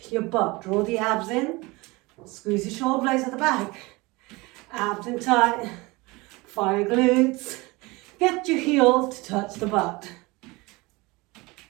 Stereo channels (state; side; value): quieter; left; 23.7 dB